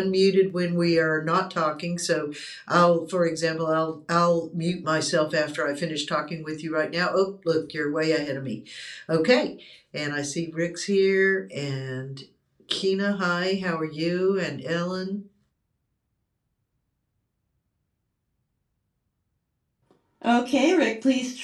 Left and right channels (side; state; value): both; identical; correlation 1.00